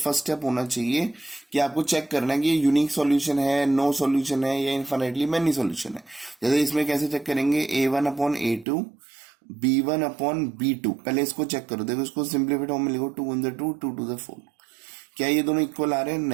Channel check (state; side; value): drops out; left; at 8.7 s